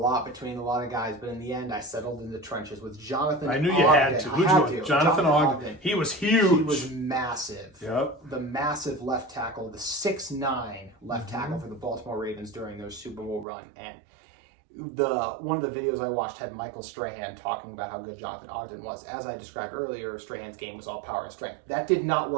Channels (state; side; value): drops out; left; at 13.5 s